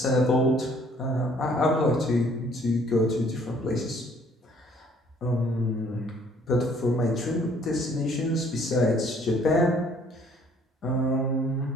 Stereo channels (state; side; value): normal; both; correlation 0.60